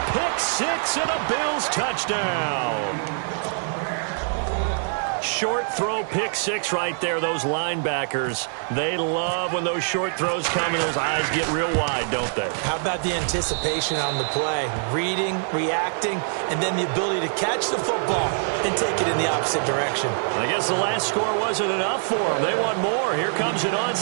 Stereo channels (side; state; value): left; silent; 57 dB below the other